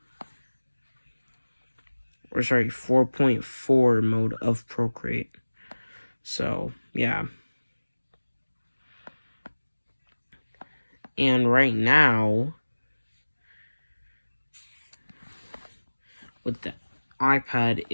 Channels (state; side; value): inverted; both; correlation -1.00